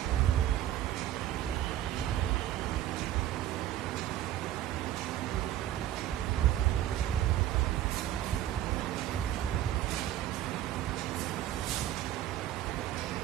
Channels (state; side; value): quieter; left; 12.5 dB